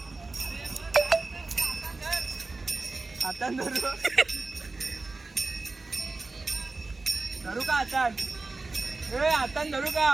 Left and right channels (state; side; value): quieter; left; 3.6 dB